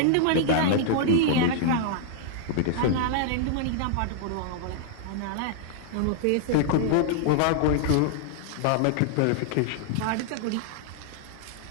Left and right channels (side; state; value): both; different; correlation -0.01